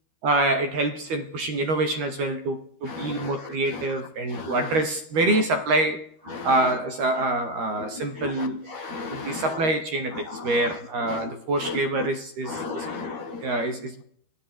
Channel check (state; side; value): late; left; 13 ms